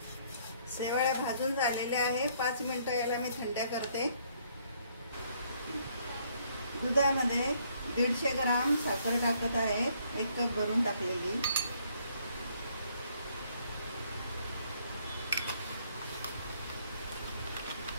शेवळ्या भाजून झालेल्या आहे, 5 मिनिटं याला मी थंड्या करते। दुधामध्ये 150 ग्राम साखर टाकत आहे, 1 कप भरून टाकलेली।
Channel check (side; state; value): both; inverted; correlation -0.67